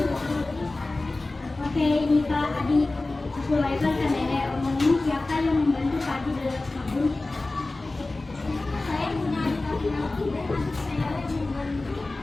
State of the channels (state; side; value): quieter; right; 3.1 dB